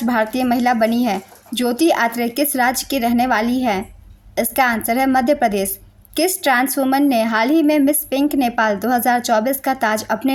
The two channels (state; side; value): identical; both; correlation 1.00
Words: भारतीय महिला बनी है। ज्योति आत्रे किस राज्य की रहने वाली है? इसका आंसर है मध्य प्रदेश। किस ट्रांस वुमन ने हाल ही में मिस पिंक नेपाल 2024 का ताज